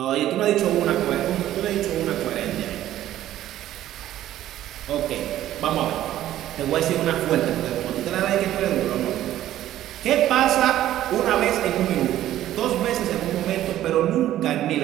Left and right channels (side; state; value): left; quieter; 13.1 dB